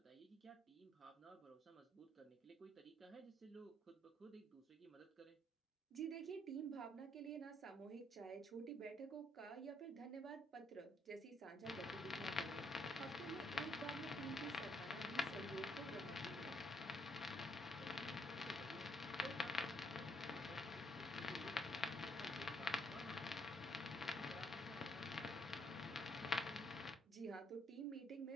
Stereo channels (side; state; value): both; normal; correlation 0.70